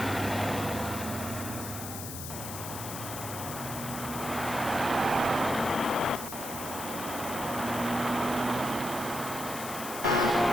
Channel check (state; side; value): noise; left; hiss, 8 dB below the sound